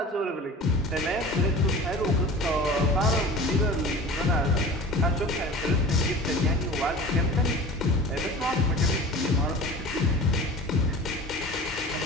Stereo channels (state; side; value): normal; both; correlation 0.38